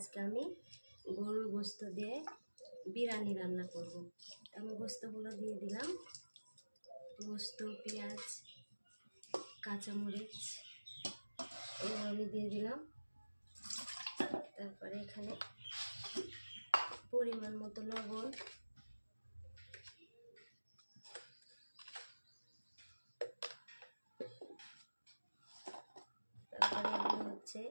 আমি গরুর গোস্ত দিয়ে বিরিয়ানি রান্না করব। আমি গোস্তগুলো দিয়ে দিলাম, গোস্ত, পেঁয়াজ, কাঁচামরিচ এগুলো আমি দিয়ে দিলাম। তারপরে এখানে পরিমাণ মতো লবণ, তারপরে এগুলো হচ্ছে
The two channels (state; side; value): inverted; both; correlation -1.00